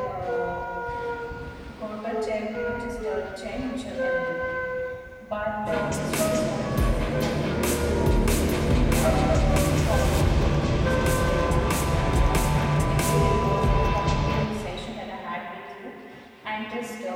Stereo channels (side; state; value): both; identical; correlation 1.00